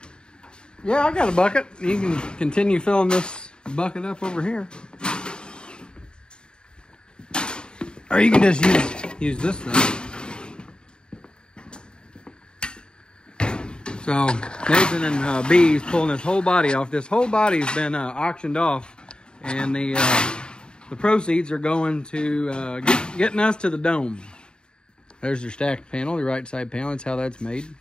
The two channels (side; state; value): right; late; 0.049 ms